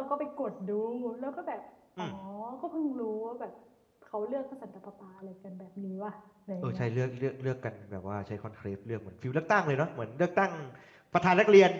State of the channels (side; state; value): both; identical; correlation 1.00